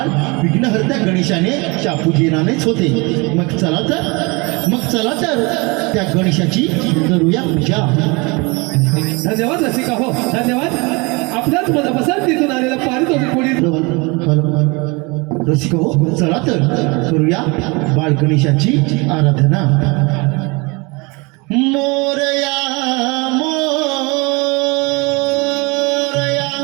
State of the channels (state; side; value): quieter; left; 27.4 dB